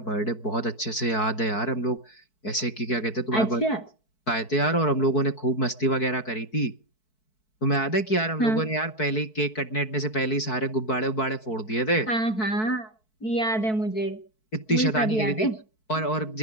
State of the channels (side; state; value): right; late; 4.6 ms